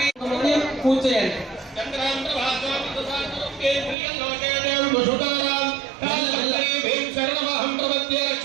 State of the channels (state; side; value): drops out; left; at 4.0 s